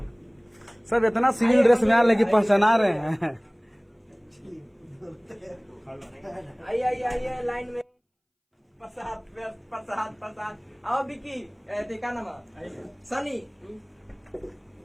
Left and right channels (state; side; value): identical; both; correlation 1.00